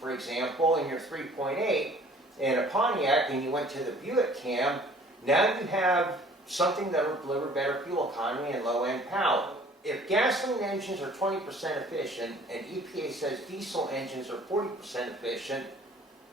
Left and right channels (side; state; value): both; normal; correlation 0.53